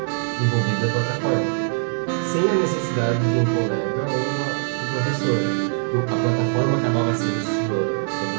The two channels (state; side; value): silent; left; 64 dB below the other